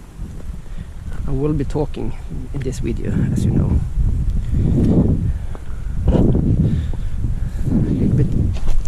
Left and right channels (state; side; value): identical; both; correlation 1.00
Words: I will be talking in this video, as you know, a little bit